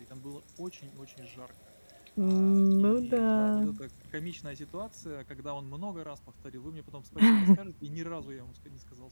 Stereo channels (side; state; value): both; inverted; correlation -1.00